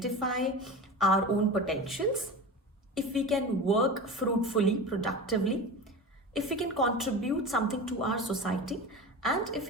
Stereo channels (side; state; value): both; normal; correlation 0.29